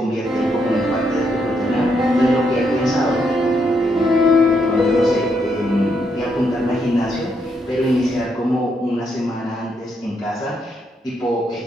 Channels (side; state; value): both; normal; correlation 0.77